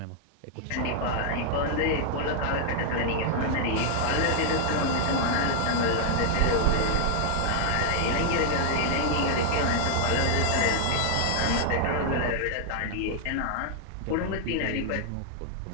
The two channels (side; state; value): both; different; correlation 0.00